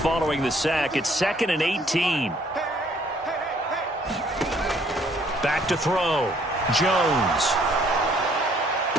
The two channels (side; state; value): both; normal; correlation 0.62